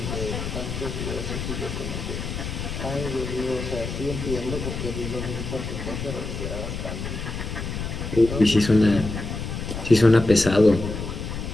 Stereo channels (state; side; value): noise; left; rumble, 5 dB below the sound